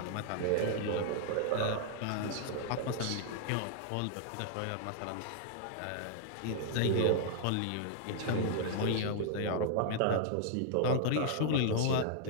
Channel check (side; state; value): both; different; correlation -0.01